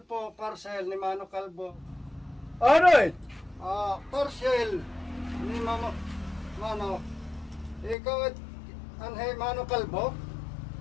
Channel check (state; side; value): drops out; right; at 8.0 s